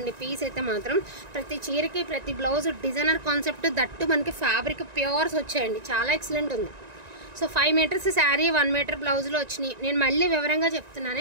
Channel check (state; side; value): late; left; 1.9 ms